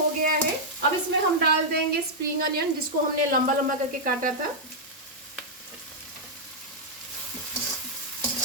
गया है। अब इसमें हम डाल देंगे स्प्रिंग अनियन जिसको हमने लंबा लंबा करके काटा था।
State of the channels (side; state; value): both; normal; correlation -0.05